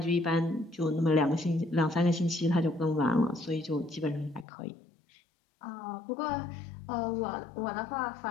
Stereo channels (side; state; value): right; drops out; at 4.5 s